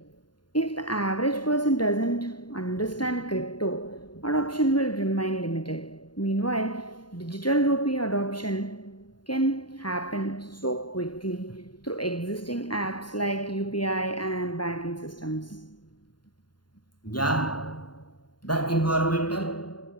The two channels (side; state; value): right; late; 0.71 ms